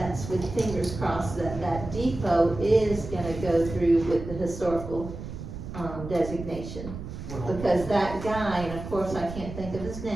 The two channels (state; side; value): noise; right; rumble, 9 dB below the sound